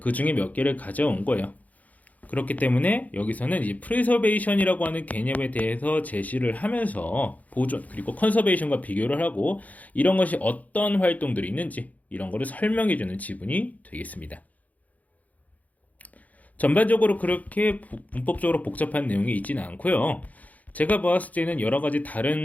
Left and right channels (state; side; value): late; right; 0.076 ms